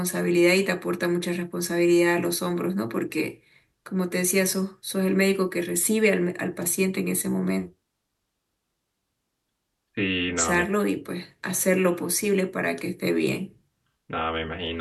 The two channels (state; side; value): identical; both; correlation 1.00